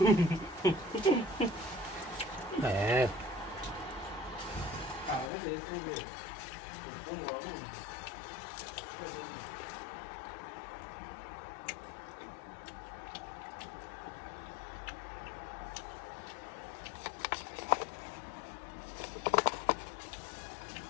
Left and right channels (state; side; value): drops out; right; at 5.3 s